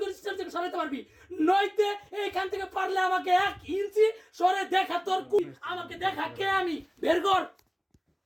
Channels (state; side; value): identical; both; correlation 1.00